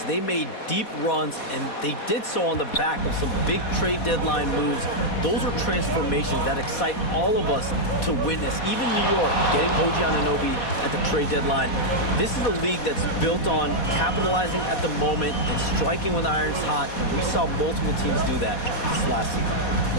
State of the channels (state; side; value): late; right; 4.2 ms